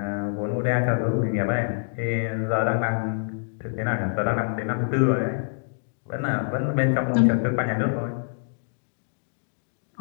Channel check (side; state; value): right; silent; digital silence